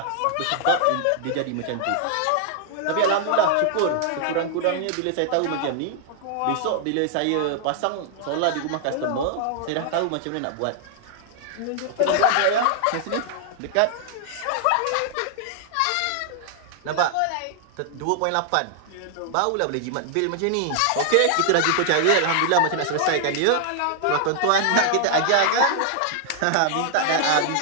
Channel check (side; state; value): both; different; correlation -0.01